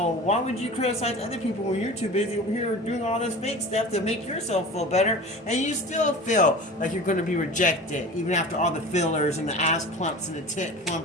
why would you criticize other people when you're too busy over here doing all this fake stuff to make yourself feel better, and you still feel like you're going to be rejected, even after all the fillers and the ass plumps and the tit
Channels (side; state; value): both; normal; correlation 0.36